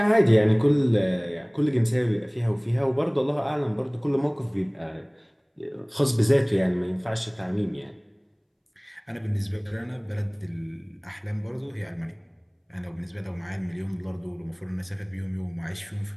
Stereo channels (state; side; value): identical; both; correlation 1.00